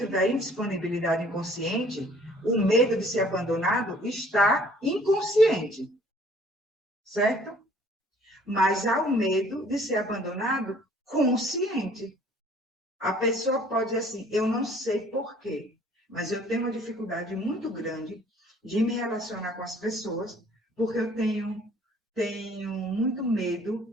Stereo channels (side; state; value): both; normal; correlation 0.56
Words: da indisponibilidade inconsciente, o medo de ser abandonado está inconsciente, certo? Mas há o medo de ser abandonado consciente. A pessoa pode dizer assim: eu não sei por quê, mas eu tenho uma dificuldade muito grande de me relacionar com as pessoas, porque eu tenho muito